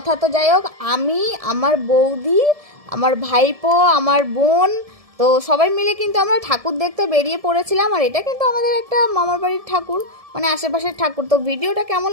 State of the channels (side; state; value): left; late; 1.7 ms